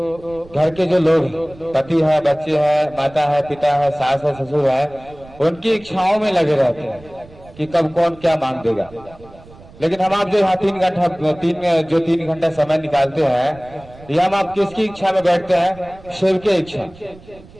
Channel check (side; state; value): right; noise; rumble, 22 dB below the sound